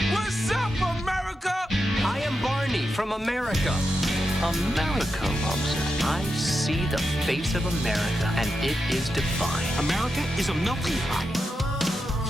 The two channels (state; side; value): normal; both; correlation 0.88